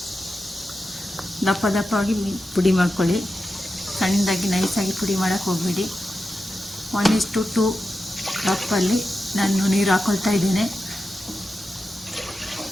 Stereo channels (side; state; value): both; normal; correlation 0.91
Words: ದಪ್ಪ ದಪ್ಪವಾಗಿ ಪುಡಿ ಮಾಡ್ಕೊಳ್ಳಿ. ಸಣ್ಣದಾಗಿ ನೈಸಾಗಿ ಪುಡಿ ಮಾಡೋಕ್ಕೆ ಹೋಗ್ಬೇಡಿ. 1:2 ಕಪ್ಪಲ್ಲಿ ನಾನು ನೀರು ಹಾಕ್ಕೊಳ್ತಾ ಇದ್ದೇನೆ.